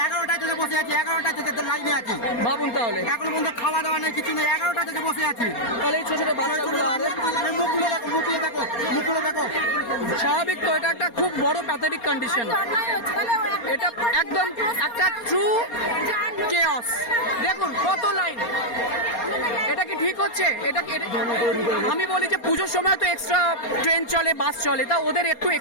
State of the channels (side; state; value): right; late; 4.3 ms